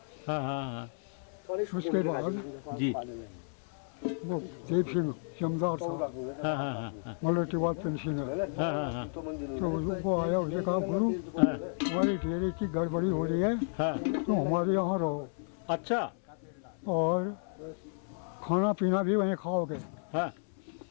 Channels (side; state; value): right; silent; 56 dB below the other